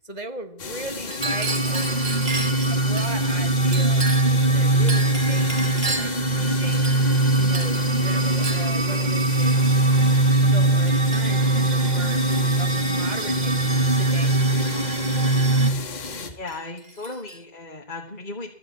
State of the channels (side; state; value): right; late; 2.0 ms